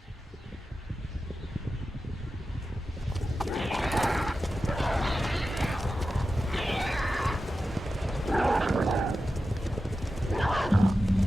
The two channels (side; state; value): both; normal; correlation 0.92